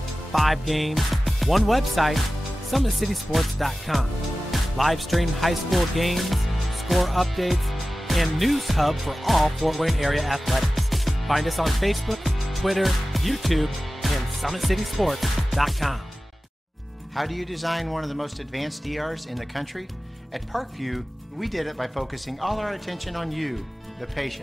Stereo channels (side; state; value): both; normal; correlation 0.96